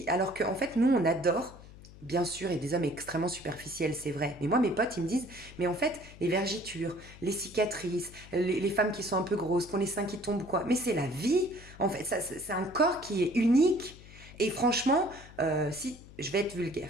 alors qu'en fait, nous, on adore, bien sûr, et des hommes extrêmement superficiels, c'est vrai. Mais moi, mes potes, ils me disent, mais en fait, les vergitures, les cicatrices, les femmes qui sont un peu grosses, qui ont les seins qui tombent, quoi. Mais c'est la vie, en fait. C'est un corps qui est unique. Et franchement, si je vais être vulgaire,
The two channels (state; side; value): noise; left; hum, 19 dB below the sound